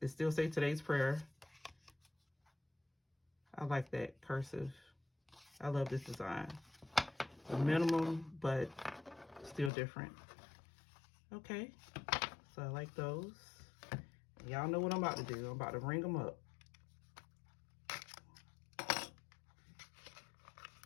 still says today's prayer. I like that cursive. I love this design. A minimum, but still different. Okay, so I like those. Y'all know what I'm about to do. I'm about to ring them up.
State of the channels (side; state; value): right; drops out; at 9.7 s